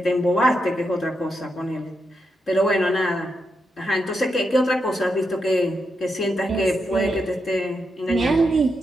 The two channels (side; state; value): both; normal; correlation 0.84